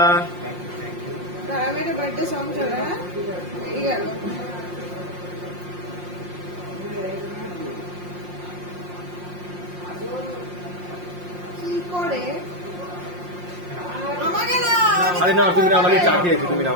मेरे birthday song चला है ये गেল কি করে আমাকে না আরে না তুমি না আমাকে চা খেয়েছো তুমি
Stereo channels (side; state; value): left; late; 5.6 ms